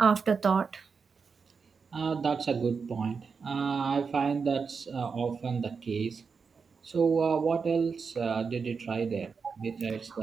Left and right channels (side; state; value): left; quieter; 5.4 dB